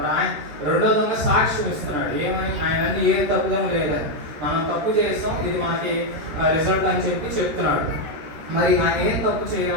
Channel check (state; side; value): late; left; 13 ms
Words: ఆయన 2వ దొంగ సాక్ష్యం ఇస్తున్నాడు ఏమని, ఆయన ఏ తప్పిదము లేదని, మనం తప్పు చేస్తాం, ఇది మనకి రిజల్ట్ అని చెప్తున్నాడు. మరి ఆయన ఏం తప్పు